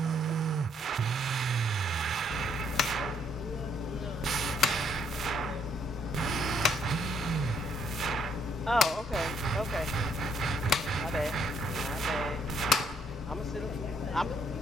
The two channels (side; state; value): both; normal; correlation 0.70